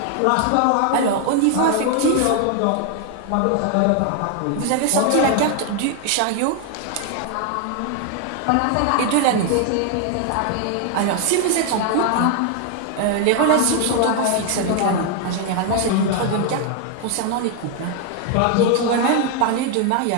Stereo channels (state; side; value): different; both; correlation 0.01